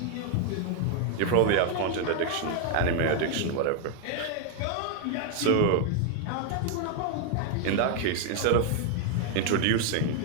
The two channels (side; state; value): both; different; correlation 0.01